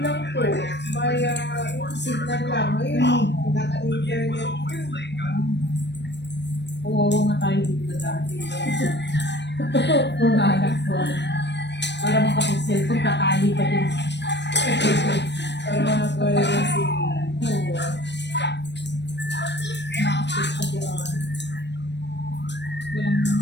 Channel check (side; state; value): right; late; 0.50 ms